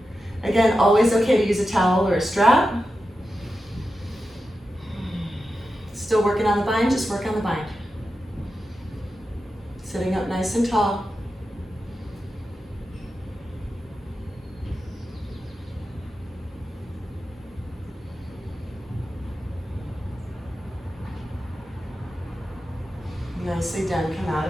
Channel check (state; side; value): normal; both; correlation 0.91